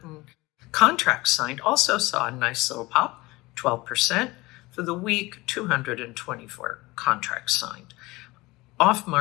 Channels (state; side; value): quieter; right; 21.2 dB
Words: Contracts signed also saw a nice little pop, 12%. For the week, 224 contracts signed.